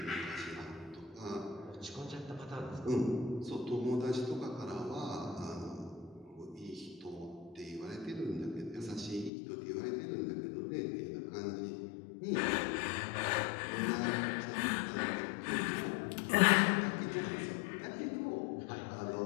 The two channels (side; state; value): right; drops out; at 9.3 s